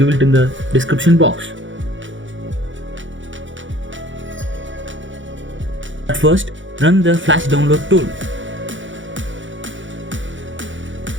it in the description box. At first, run the flash download tool.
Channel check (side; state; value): left; late; 0.56 ms